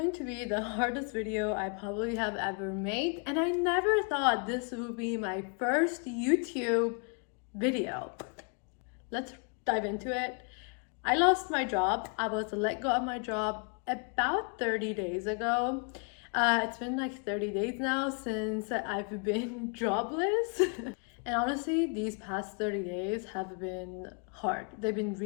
to be the hardest video I probably have ever made, and I never thought this would be my first YouTube video. Let's dive into it. I lost my job. I was let go of my job about 30 days ago. It's been like 30 days now since I've been jobless. And honestly, these past 30 days have been hard. They've been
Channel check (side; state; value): right; quieter; 38.7 dB